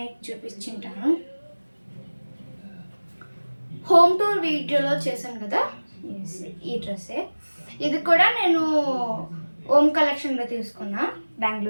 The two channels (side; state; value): both; inverted; correlation -1.00